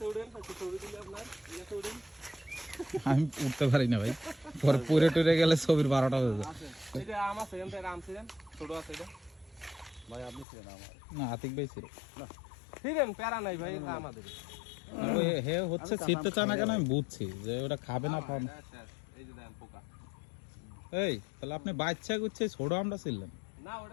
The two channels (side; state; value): right; drops out; at 10.5 s